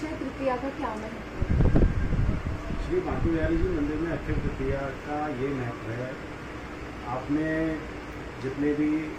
तृतीया का क्या महत्व है? श्री बांके बिहारी जी मंदिर में अक्षय तृतीया का ये महत्व है। आपने जितने भी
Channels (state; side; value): identical; both; correlation 1.00